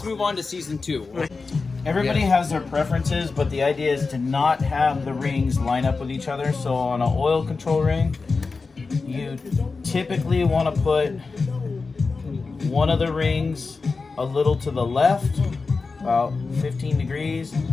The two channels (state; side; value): quieter; right; 4.3 dB